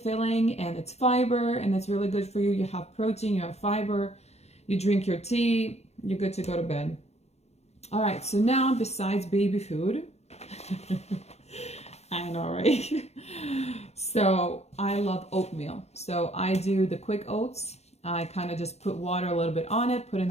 and it's fiber, and it's really good for you. You have protein, you have fiber, you drink your tea, you're good to go to bed. All right, so now besides baby food, I know, right? So I love oatmeal. So I do the quick oats. I kind of just put water a little bit on it, put it in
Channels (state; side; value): late; right; 0.31 ms